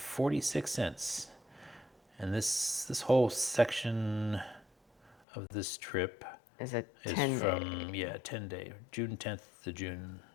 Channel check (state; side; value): drops out; right; at 5.2 s